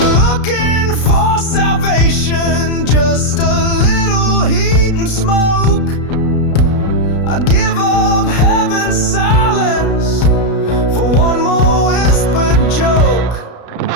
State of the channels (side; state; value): right; late; 33 ms